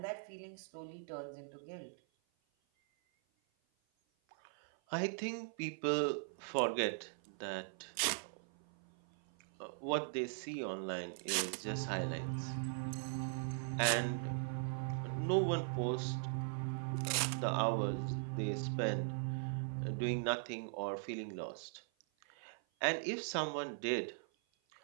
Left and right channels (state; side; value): silent; left; 51 dB below the other